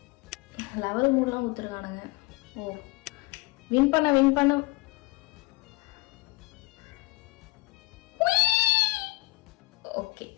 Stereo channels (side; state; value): right; quieter; 23.9 dB